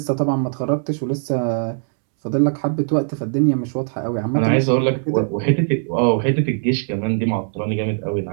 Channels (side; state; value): left; silent; 66 dB below the other